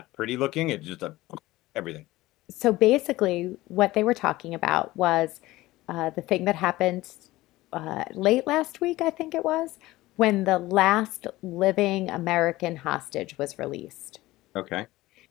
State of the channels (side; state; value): right; quieter; 18.1 dB